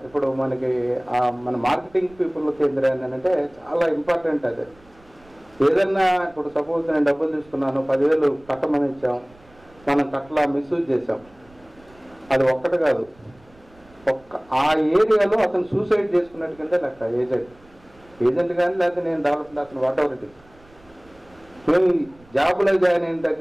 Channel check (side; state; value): right; noise; rumble, 28 dB below the sound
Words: ఇప్పుడు మనకి మన మార్కెటింగ్ పీపుల్కి ఏంటంటే చాలా ఇంపార్టెంట్ అది. ఏదన్నా ఇప్పుడు సపోజ్ నేను డబ్బులు తీసుకున్నాను 10,000 కట్టమని ఇచ్చాం, మనం కట్లా మిస్యూజ్ చేసాం, అది ఒక్కటి కాదు ఆ ఏరియాలో అతను సూసైడ్ చేసుకున్నట్టు కింద లెక్క ఏజెంట్ కానీ లేకపోతే నేను డెవలప్మెంట్ అతను వాట్ ఎవర్ ఇట్. మేము జాబులో జాయిన్ అయిన